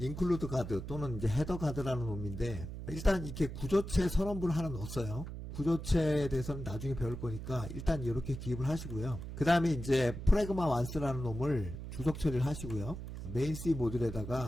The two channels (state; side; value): noise; right; hum, 8 dB below the sound